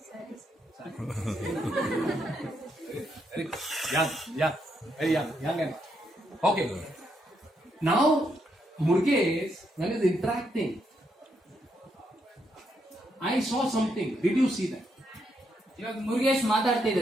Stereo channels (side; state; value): both; normal; correlation 0.78